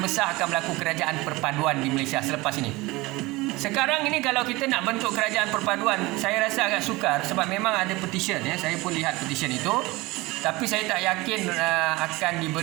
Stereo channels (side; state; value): left; quieter; 21.6 dB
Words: akan berlaku kerajaan perpaduan di Malaysia selepas ini. Sekarang ini kalau kita nak bentuk kerajaan perpaduan, saya rasa agak sukar sebab memang ada petition, ya. Saya pun lihat petition itu. Tapi saya tak yakin akan